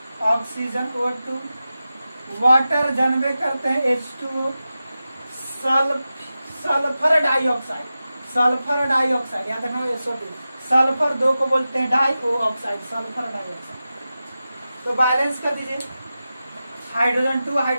ऑक्सीजन O2, वाटर जनबे करते हैं H2O, sulphur dioxide, sulphur dioxide याद रखना SO2, सल्फर 2 को बोलते हैं डाई ऑक्साइड, सल्फर डाइऑक्साइड। तो बैलेंस कर दीजिए, हाइड्रोजन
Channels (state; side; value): inverted; both; correlation -0.93